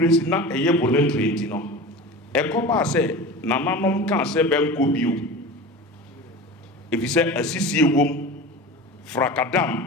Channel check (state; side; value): normal; both; correlation 0.32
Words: na eye voluntary enti no ekoba se nananom kan se benko bio if you say asisi ewom frakadam